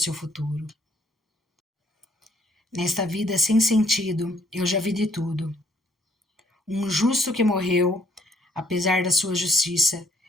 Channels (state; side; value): normal; both; correlation 0.65